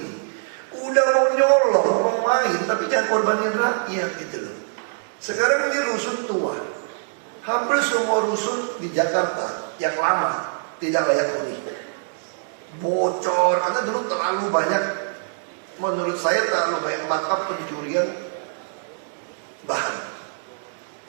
Udah mau nyolong, mau main, tapi jangan korbanin rakyat gitu loh. Sekarang ini rusun tua. Hampir semua rusun di Jakarta yang lama tidak layak huni. Bocor, karena dulu terlalu banyak, menurut saya terlalu banyak markup pencurian bahan.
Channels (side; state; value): left; silent; digital silence